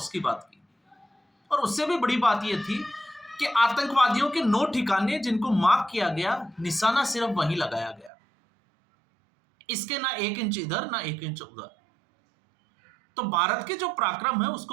की बात की, और उससे भी बड़ी बात यह थी कि आतंकवादियों के 9 ठिकाने जिनको मार्क किया गया, निशाना सिर्फ वहीं लगाया गया, इसके ना 1 इंच इधर ना 1 इंच उधर। तो भारत के जो पराक्रम है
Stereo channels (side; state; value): left; drops out; at 8.1 s